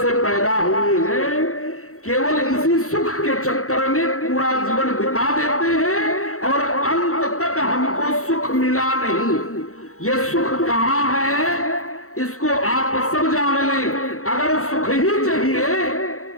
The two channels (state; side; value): late; right; 0.64 ms